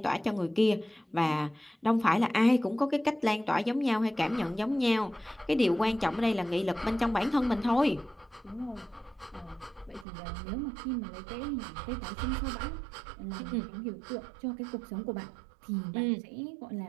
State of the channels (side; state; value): left; drops out; at 10.1 s